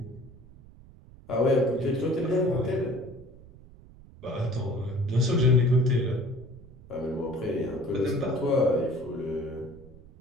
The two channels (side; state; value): right; noise; rumble, 21 dB below the sound